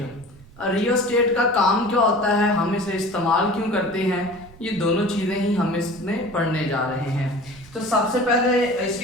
रियोस्टेट का काम क्या होता है, हम इसे इस्तेमाल क्यों करते हैं, ये दोनों चीज़ें ही हम इसमें पढ़ने जा रहे हैं। तो सबसे पहले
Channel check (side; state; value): right; noise; rumble, 22 dB below the sound